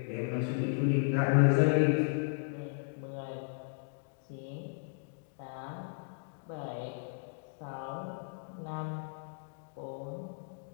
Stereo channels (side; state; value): right; silent; digital silence